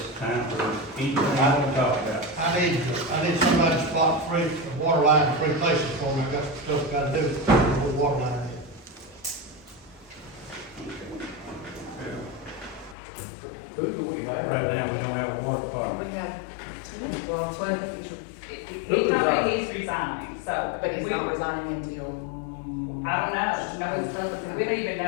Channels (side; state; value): right; drops out; at 13.0 s